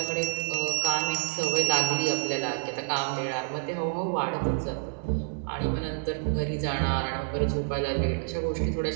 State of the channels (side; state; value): left; silent; digital silence